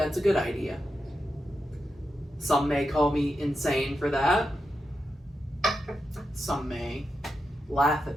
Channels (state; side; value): normal; both; correlation 0.87